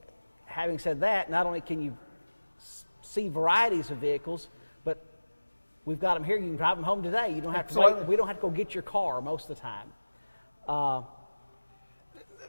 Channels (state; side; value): inverted; both; correlation -1.00